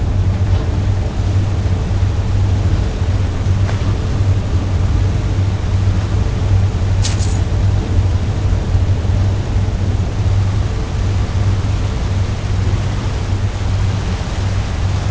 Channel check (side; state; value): both; identical; correlation 1.00